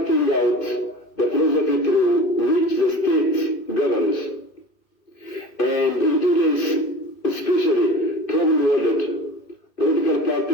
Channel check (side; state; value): right; late; 2.5 ms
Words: out the philosophy through which the state governs. And in today's especially troubled world, political